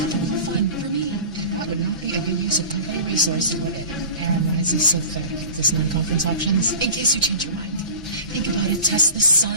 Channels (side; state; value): both; inverted; correlation -0.37